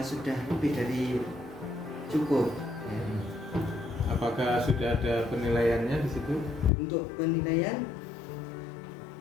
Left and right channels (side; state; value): right; drops out; at 6.7 s